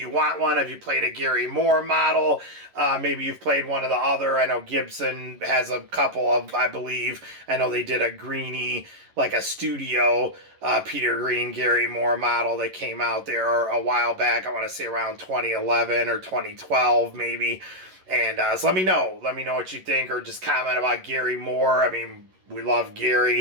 want one? Have you played a Gary Moore model? Maybe you've played one of the other. I know Gibson has a couple of, I believe. I know they did a Greenie, like a studio Peter Green Gary Moore model that came out there a while back. I want to say around 2011 or 2012 maybe. And so let me know. Let me know what you think, or just comment about Gary Moore. I mean, we love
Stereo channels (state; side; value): late; left; 11 ms